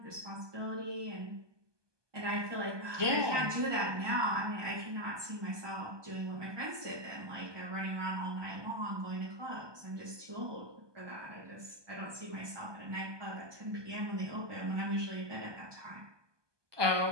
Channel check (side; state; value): left; late; 1.2 ms